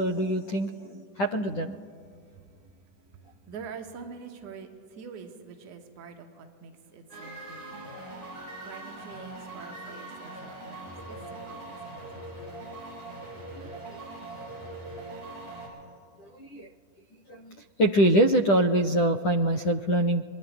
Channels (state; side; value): late; right; 10 ms